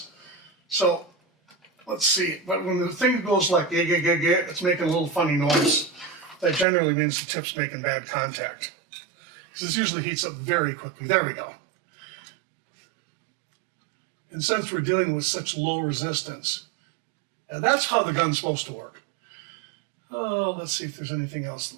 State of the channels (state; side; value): drops out; left; at 6.7 s